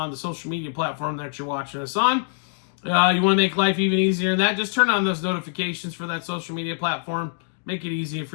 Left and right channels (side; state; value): right; silent; digital silence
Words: the social media platform that you're watching us on. You want to make life even easier than that, just turn on those notifications for that social media platform. Make it easier